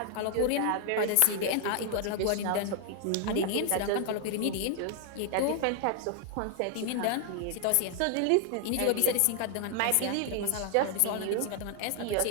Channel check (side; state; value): both; different; correlation 0.00